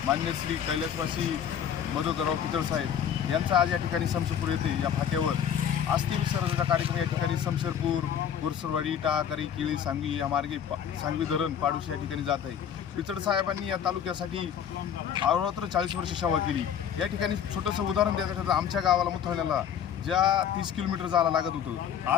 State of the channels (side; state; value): right; quieter; 8.7 dB